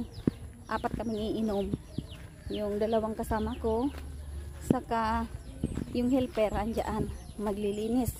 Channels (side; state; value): both; identical; correlation 1.00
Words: Apat kami iinom. Yung dalawang kasama ko. Saka yung helper andyan. Maglilinis.